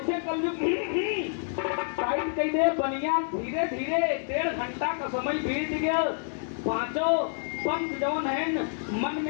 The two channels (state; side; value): silent; right; digital silence